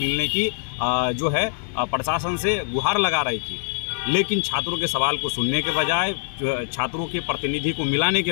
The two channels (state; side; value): silent; right; digital silence